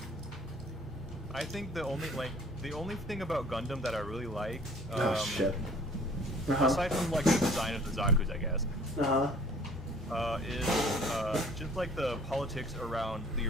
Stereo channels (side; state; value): both; normal; correlation 0.53